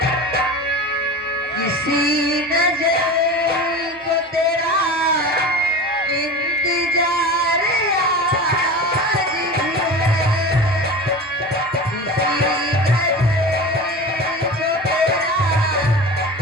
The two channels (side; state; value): both; normal; correlation 0.31